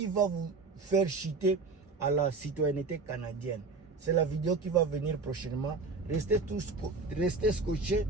va vous faire chuter à la citoyenneté canadienne. C'est la vidéo qui va venir prochainement. Restez scotchés,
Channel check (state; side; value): quieter; left; 4.1 dB